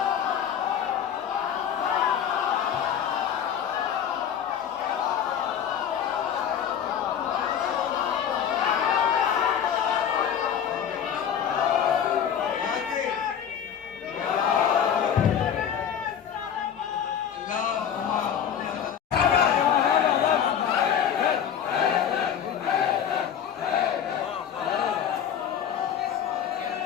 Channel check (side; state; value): right; quieter; 8.7 dB